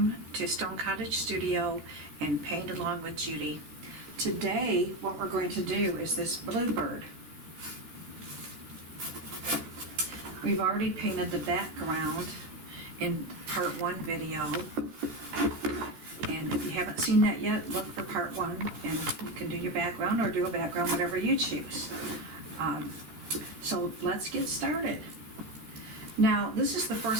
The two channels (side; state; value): left; late; 13 ms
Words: to Stone Cottage Studio and Paint Along with Judy. Today what we're going to do is this Bluebird. We've already painted the background in part 1 video, and if you haven't seen that yet, look for part 1 and you can do your background or do a background, whatever you choose. So let's get started. Now, this is the